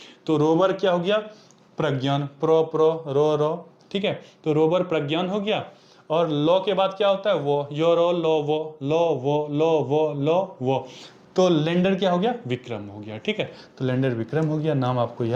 तो रोवर क्या हो गया, प्रज्ञान, प्रो प्रो रो रो, ठीक है। तो रोवर प्रज्ञान हो गया, और लो के बाद क्या होता है, वो, यो रो लो वो, लो वो, लो वो, लो वो, तो लैंडर क्या हो गया, विक्रम हो गया, ठीक है। तो लैंडर विक्रम हो गया, नाम आपको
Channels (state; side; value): identical; both; correlation 1.00